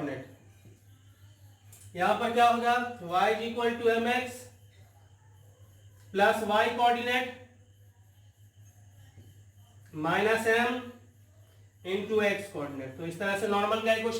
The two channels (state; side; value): identical; both; correlation 1.00